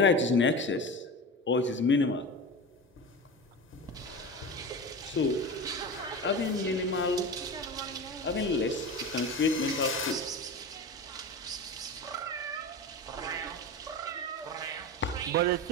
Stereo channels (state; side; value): normal; both; correlation 0.27